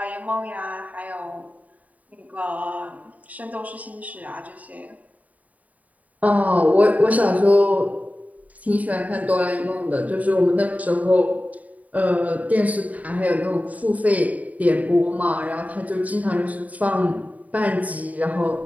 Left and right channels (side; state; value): left; late; 0.072 ms